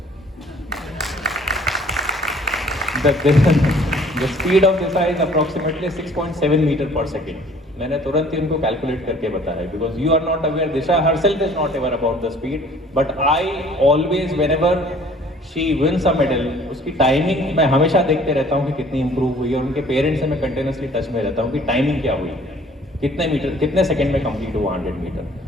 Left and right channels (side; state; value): both; normal; correlation 0.54